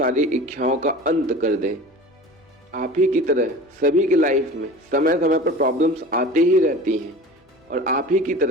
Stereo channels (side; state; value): both; normal; correlation 0.38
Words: इच्छाओं का अंत कर दे। आप ही की तरह सभी की लाइफ में समय समय पर प्रॉब्लम्स आते ही रहती हैं, और आप ही की